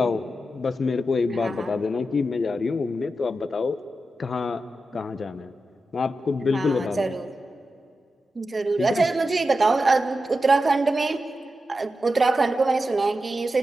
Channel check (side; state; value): both; normal; correlation 0.90